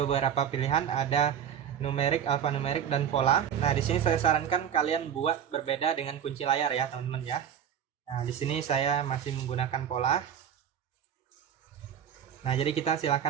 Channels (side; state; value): left; quieter; 8.8 dB